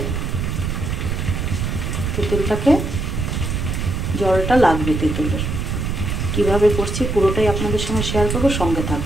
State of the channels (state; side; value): noise; right; rumble, 2 dB below the sound